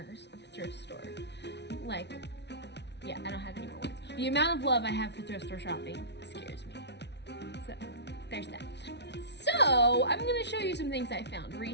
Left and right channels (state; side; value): late; right; 0.50 ms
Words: of a thrift store. Like, yeah, I don't have any more words. The amount of love I have for thrift store shopping scares me. So, there's that. So, I'm gonna show you some things I found